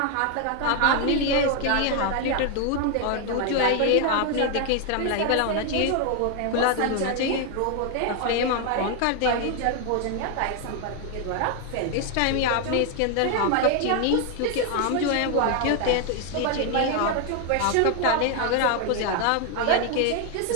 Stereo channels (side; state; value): both; different; correlation 0.01